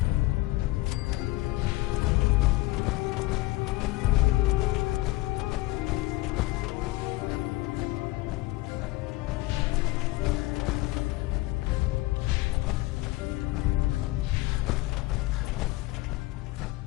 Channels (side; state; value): right; quieter; 19.5 dB